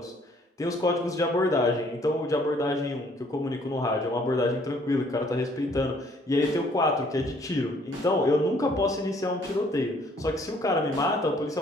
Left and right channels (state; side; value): normal; both; correlation 0.62